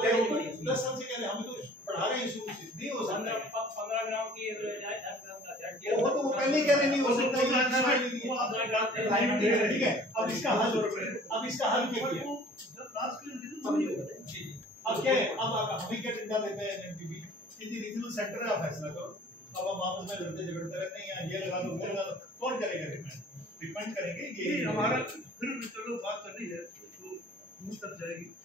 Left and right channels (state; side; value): normal; both; correlation 0.50